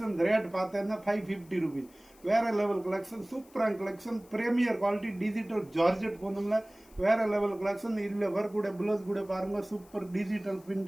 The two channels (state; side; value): noise; left; hiss, 27 dB below the sound